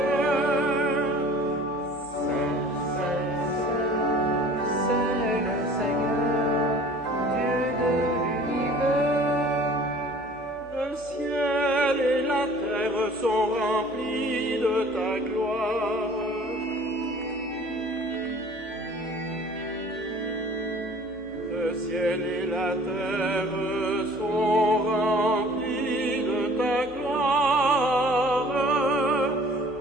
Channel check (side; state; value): both; normal; correlation 0.49